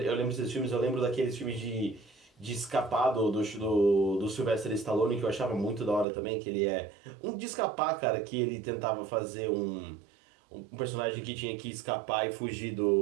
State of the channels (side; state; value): left; drops out; at 6.1 s